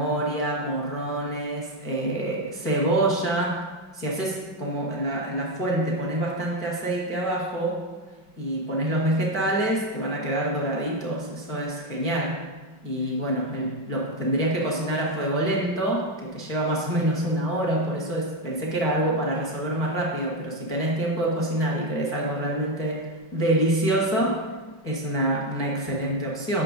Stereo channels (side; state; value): right; late; 5.2 ms